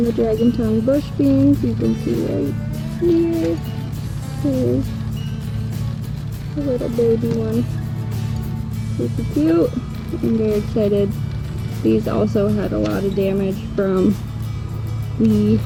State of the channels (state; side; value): identical; both; correlation 1.00